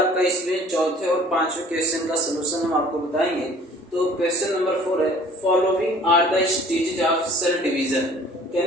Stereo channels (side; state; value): both; normal; correlation 0.51